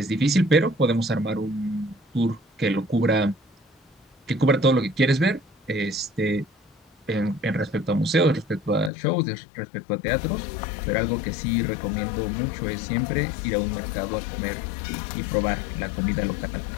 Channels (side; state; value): right; drops out; at 8.9 s